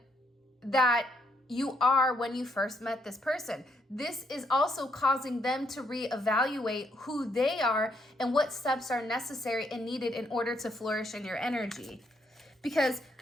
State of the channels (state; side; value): normal; both; correlation 0.73